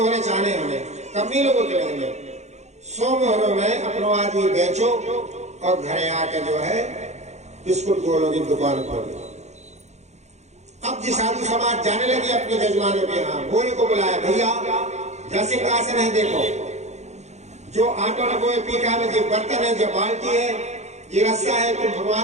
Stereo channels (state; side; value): late; left; 0.33 ms